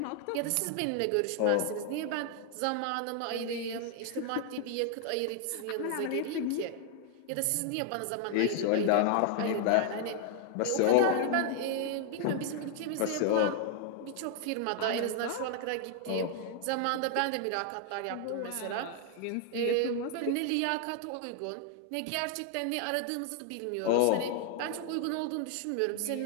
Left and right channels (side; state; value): both; different; correlation 0.00